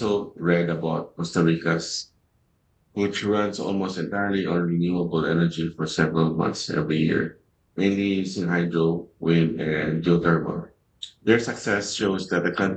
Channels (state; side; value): identical; both; correlation 1.00